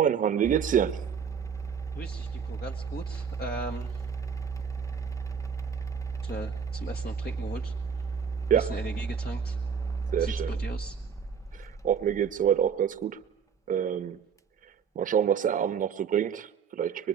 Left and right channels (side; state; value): left; quieter; 7.0 dB